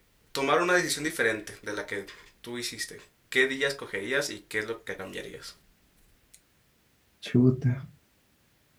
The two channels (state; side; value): identical; both; correlation 1.00